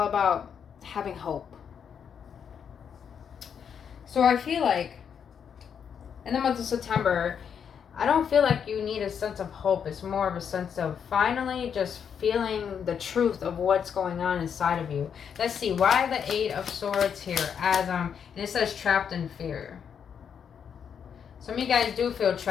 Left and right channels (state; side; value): quieter; right; 7.5 dB